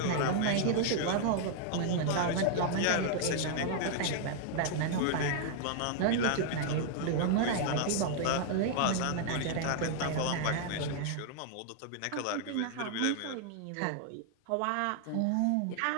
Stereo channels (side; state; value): both; different; correlation 0.00